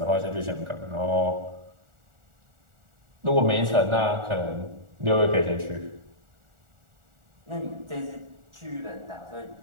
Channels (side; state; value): left; late; 1.4 ms